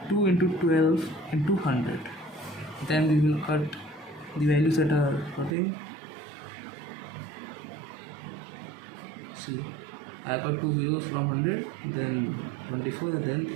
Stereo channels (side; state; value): left; drops out; at 5.5 s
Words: 2 into 12 into 100. Then we will cut the values that are cutting. See, I got 2 zeros from 100, then 24, and then